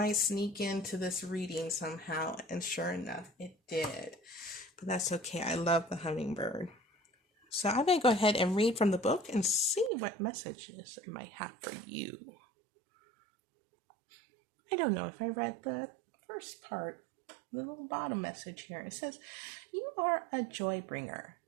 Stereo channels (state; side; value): drops out; left; at 9.9 s